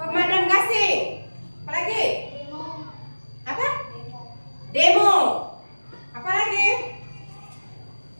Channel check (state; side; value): inverted; both; correlation -1.00